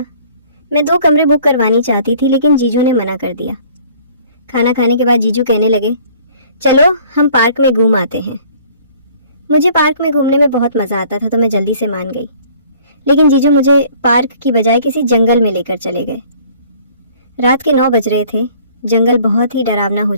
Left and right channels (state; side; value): inverted; both; correlation -0.54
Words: मैं 2 कमरे बुक करवानी चाहती थी, लेकिन जीजू ने मना कर दिया। खाना खाने के बाद जीजू कहने लगे, चलो हम पार्क में घूम आते हैं। मुझे पार्क में घूमने में बहुत मजा आता था, तो मैं जल्दी से मान गई। लेकिन जीजू मुझे पार्क की बजाय किसी जंगल में लेकर चले गए। रात के 9 बज रहे थे। जंगल बहुत ही डरावना हो